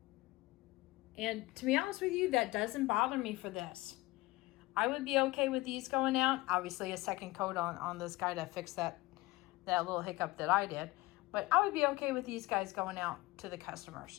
And to be honest with you, that doesn't bother me for this. I would be okay with these going out. Obviously a second coat on this guy to fix that little hiccup that I did. But I would be okay with these guys going out to the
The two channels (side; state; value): right; quieter; 20.5 dB